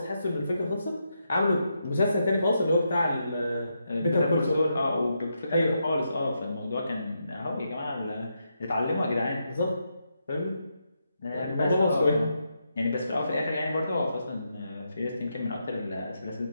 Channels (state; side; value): inverted; both; correlation -0.83